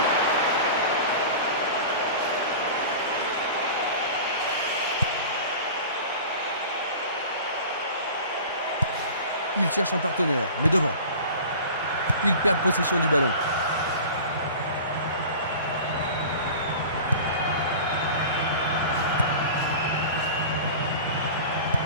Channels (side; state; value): both; inverted; correlation -0.37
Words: Il cherche un partenaire, mais devant. Il perd possession du ballon.